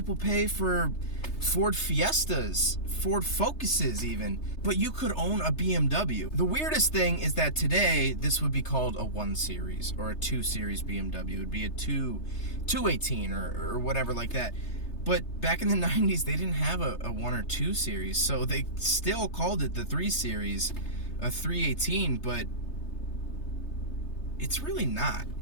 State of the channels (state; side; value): late; right; 3.3 ms